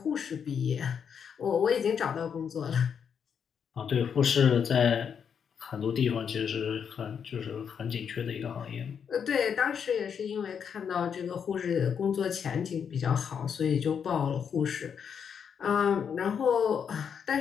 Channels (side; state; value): right; quieter; 7.3 dB